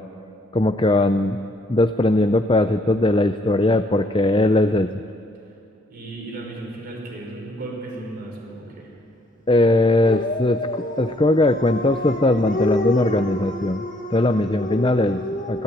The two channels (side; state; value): both; normal; correlation 0.66